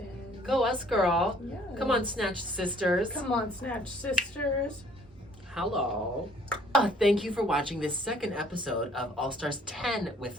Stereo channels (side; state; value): both; normal; correlation 0.59